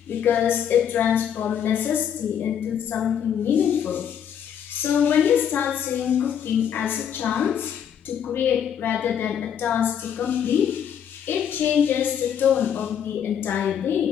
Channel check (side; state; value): right; quieter; 8.6 dB